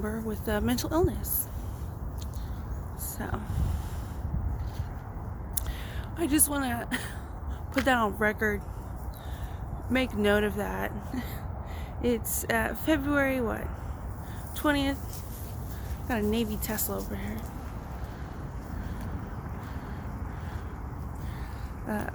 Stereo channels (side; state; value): both; identical; correlation 1.00